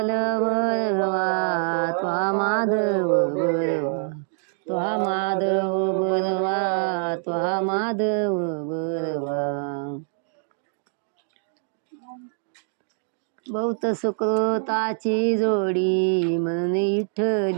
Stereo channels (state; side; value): silent; left; digital silence